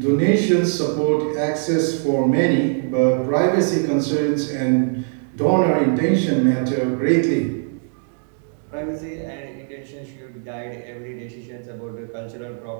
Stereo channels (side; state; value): left; silent; 61 dB below the other